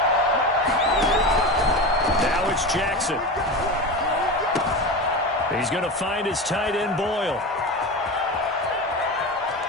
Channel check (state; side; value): normal; both; correlation 0.25